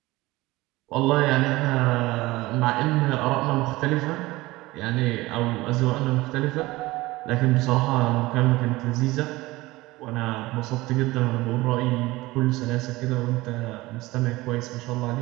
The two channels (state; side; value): quieter; left; 19.8 dB